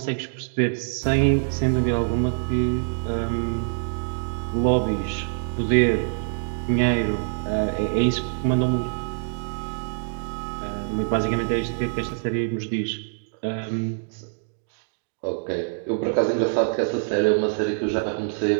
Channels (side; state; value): left; silent; digital silence